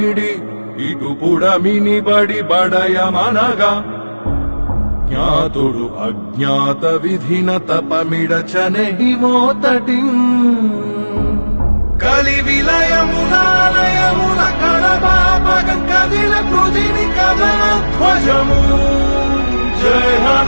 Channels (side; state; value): both; inverted; correlation -1.00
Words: ఇటు పుడమిని బడి బడయమనగా జ్ఞాతుడు అజ్ఞాత విధిన తపమిడచనెహి మోతటి కలి విలయమునాలయమున కడబాపగం కదిల పృథివి కదన ధ్వజము జయ